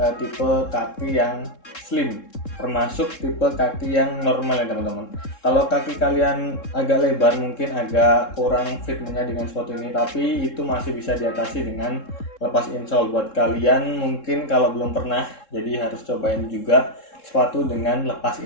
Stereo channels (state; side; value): late; right; 3.7 ms